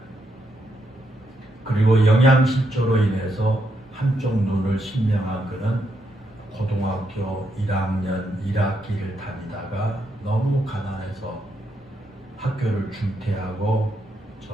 그리고 영양실조로 인해서 한쪽 눈을 실명한 그는 고등학교 1학년 1학기를 다니다가 너무 가난해서 학교를 중퇴하고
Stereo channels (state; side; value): normal; both; correlation 0.79